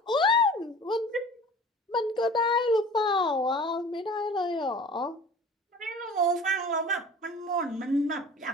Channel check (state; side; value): normal; both; correlation 0.42